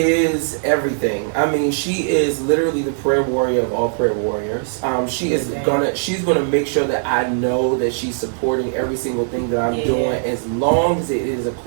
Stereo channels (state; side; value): silent; left; digital silence